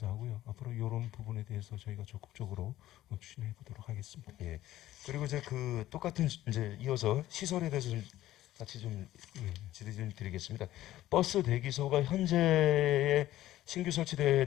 앞으로 이런 부분에 대해서 저희가 적극적으로 추진해 보도록 하겠습니다. 예. 그리고 이제 똑같은 이제 이어서 시설에 대해서 좀 같이 좀 질의 좀 드리겠습니다. 버스 대기소가 현재 신규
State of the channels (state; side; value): quieter; right; 14.4 dB